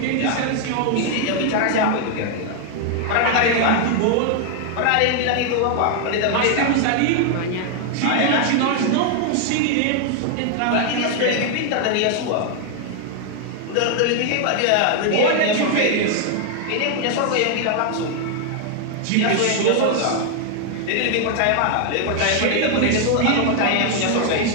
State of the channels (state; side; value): different; both; correlation 0.00